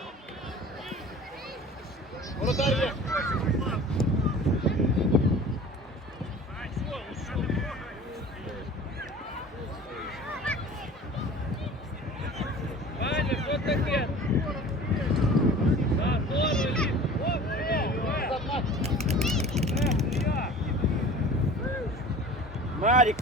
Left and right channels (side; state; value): both; normal; correlation 0.42